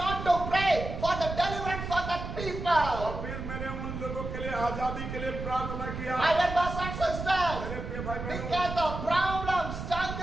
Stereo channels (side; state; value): right; noise; rumble, 7 dB below the sound